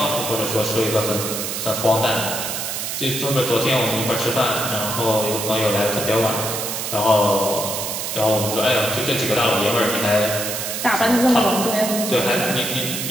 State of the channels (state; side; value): noise; right; hiss, 4 dB below the sound